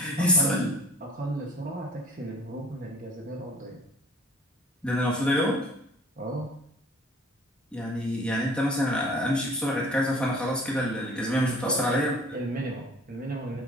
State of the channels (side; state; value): both; normal; correlation 0.49